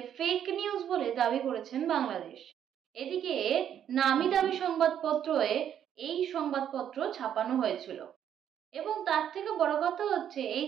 ফেক নিউজ বলে দাবি করেছেন বাংলাদেশ। এদিকে নামি দামি সংবাদপত্রে এই সংবাদপত্র ছাপানো হয়েছিল। এবং তার থেকে বড় কথা হচ্ছে এই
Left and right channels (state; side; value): quieter; left; 9.6 dB